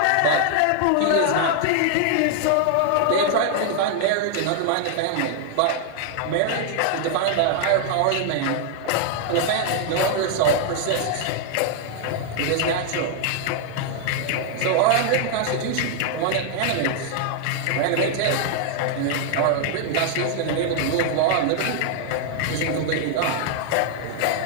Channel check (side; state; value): both; different; correlation 0.00